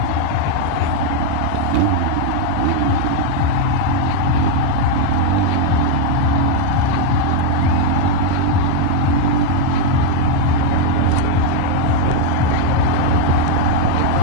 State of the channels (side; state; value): both; different; correlation 0.00